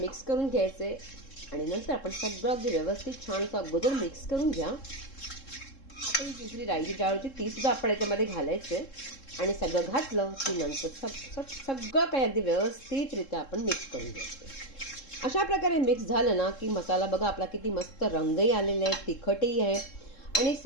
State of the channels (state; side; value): late; right; 3.7 ms